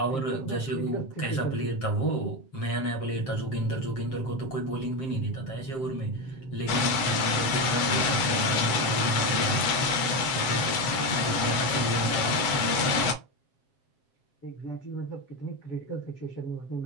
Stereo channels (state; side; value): late; right; 7.5 ms